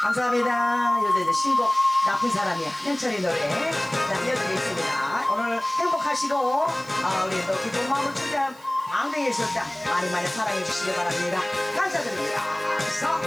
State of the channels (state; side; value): noise; right; hiss, 25 dB below the sound